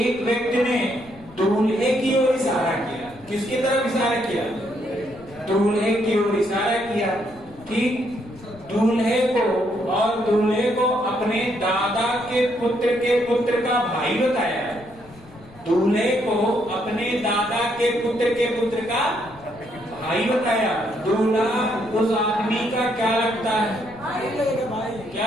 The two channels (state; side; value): noise; left; rumble, 23 dB below the sound